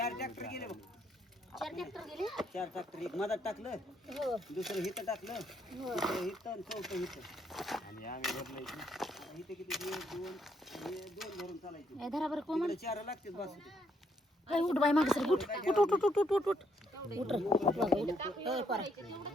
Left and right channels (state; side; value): normal; both; correlation 0.73